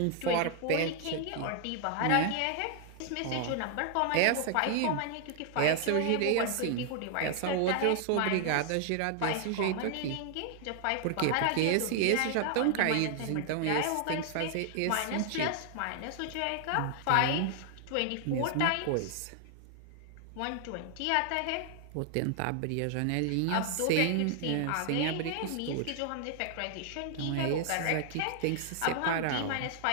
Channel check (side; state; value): both; different; correlation 0.00